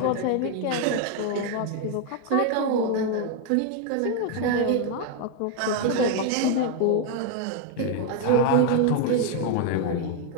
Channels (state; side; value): different; both; correlation 0.01